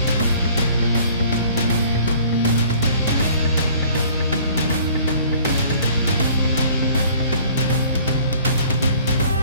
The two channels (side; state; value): both; inverted; correlation -0.54